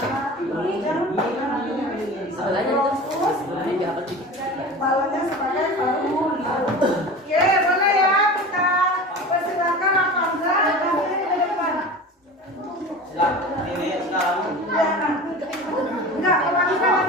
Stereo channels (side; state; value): both; normal; correlation 0.34